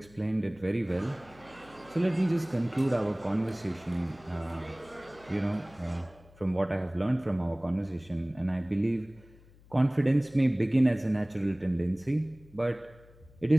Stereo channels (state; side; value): noise; left; hum, 25 dB below the sound